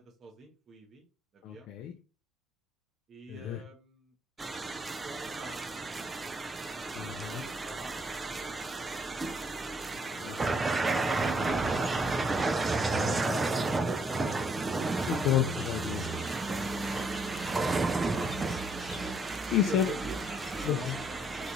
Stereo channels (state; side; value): normal; both; correlation 0.69